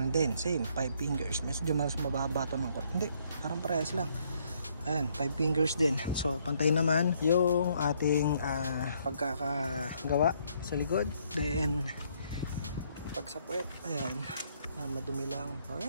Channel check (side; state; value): both; inverted; correlation -0.69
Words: din, same. 5 fingers. Medyo mas mababa ito ng hindi, parang parehas lang. Ayan, 5 fingers din. So, pantay naman yung ating pagkakagawa sa likod. Then, pag sa puwet, ayan, madumi lang. O